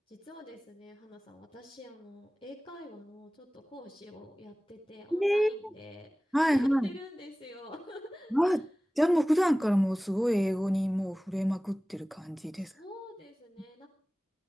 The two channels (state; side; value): normal; both; correlation 0.98